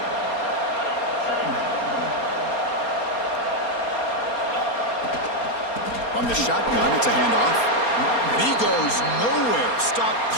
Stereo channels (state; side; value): late; right; 4.3 ms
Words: From the shotgun, it's a handoff. And he goes nowhere. Stopped